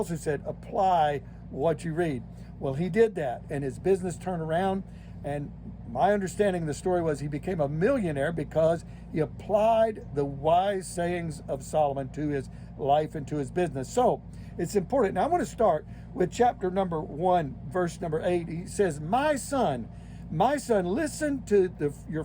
said, apply what you read. Well, he did that, and his business turned around, and my understanding of the story was he became a millionaire because he applied the wise sayings of Solomon to his life and to his business. So it's important. Now I want to start with chapter number 1, verse number 8. He says, my son, listen to your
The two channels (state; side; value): identical; both; correlation 1.00